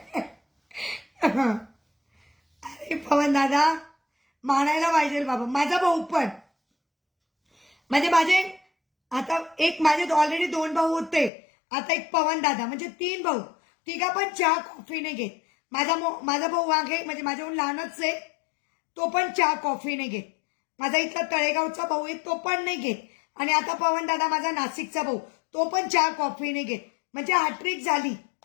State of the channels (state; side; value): drops out; right; at 11.3 s